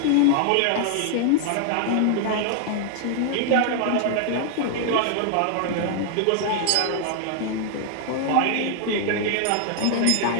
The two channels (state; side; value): different; both; correlation 0.00